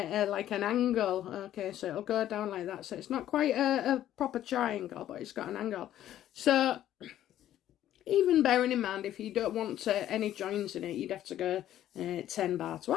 like an angle, okay, so it'll go down like that. So it's not quite a proper triangle, but it's got an angle. So even bearing in mind, if you don't want any joins in it, you'd have to go 10 by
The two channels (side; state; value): right; quieter; 12.2 dB